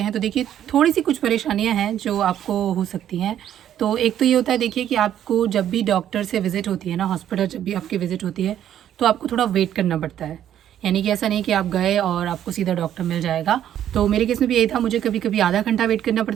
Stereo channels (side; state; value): left; quieter; 10.7 dB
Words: तो देखिए थोड़ी सी कुछ परेशानियां हैं जो आपको हो सकती हैं। तो एक तो ये होता है, देखिए कि आपको जब भी डॉक्टर से विज़िट होती है ना, हॉस्पिटल जब भी आपकी विज़िट होती है तो आपको थोड़ा वेट करना पड़ता है, यानी कि ऐसा नहीं कि आप गए और आपको सीधा डॉक्टर मिल जाएगा। तो मेरे केस में भी यही था, मुझे कभी कभी आधा घंटा वेट करना